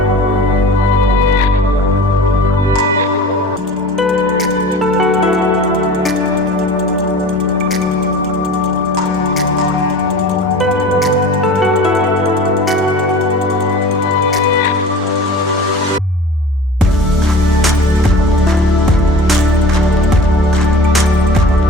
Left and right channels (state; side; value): normal; both; correlation 0.38